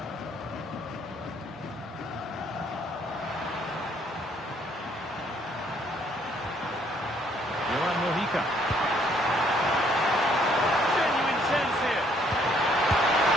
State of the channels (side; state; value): both; normal; correlation 0.65